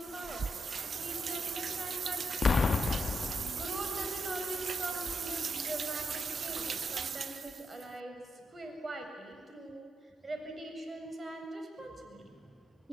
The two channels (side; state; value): both; normal; correlation 0.83